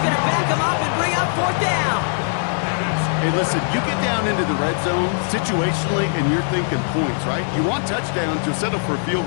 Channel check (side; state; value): right; silent; digital silence